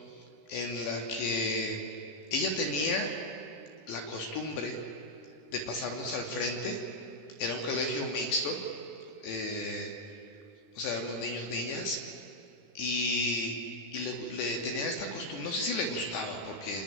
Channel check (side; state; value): right; late; 14 ms